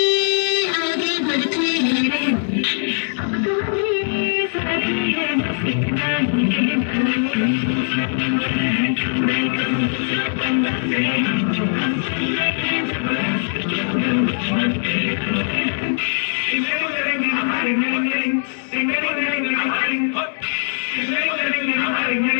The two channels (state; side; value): silent; right; 65 dB below the other